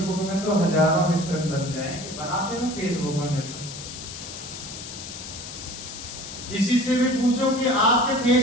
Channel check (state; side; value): noise; left; hiss, 11 dB below the sound